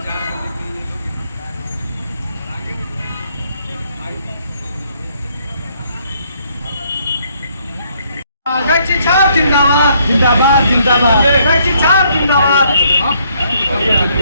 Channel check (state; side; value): inverted; both; correlation -0.69